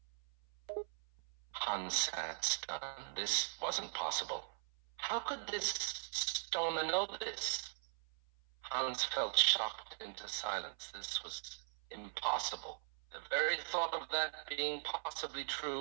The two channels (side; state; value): left; silent; 51 dB below the other